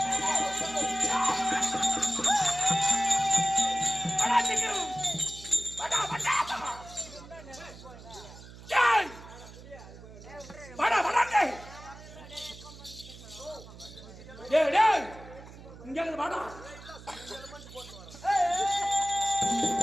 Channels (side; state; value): right; noise; hum, 17 dB below the sound